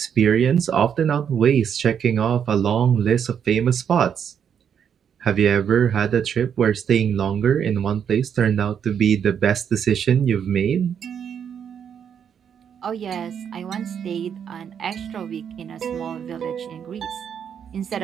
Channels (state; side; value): quieter; left; 8.0 dB